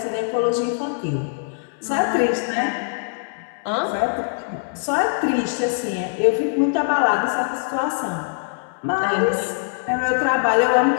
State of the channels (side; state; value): right; silent; 64 dB below the other